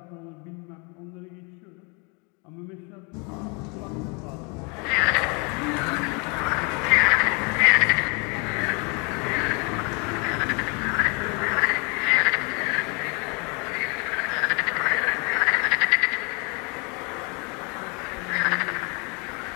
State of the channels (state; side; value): quieter; right; 32.1 dB